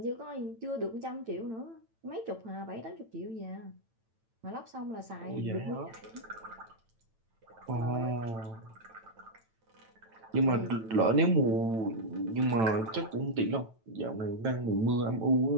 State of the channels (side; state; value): left; late; 9.0 ms